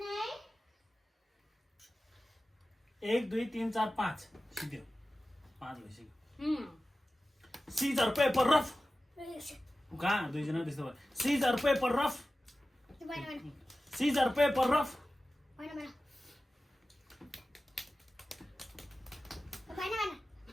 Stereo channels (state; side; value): normal; both; correlation 0.95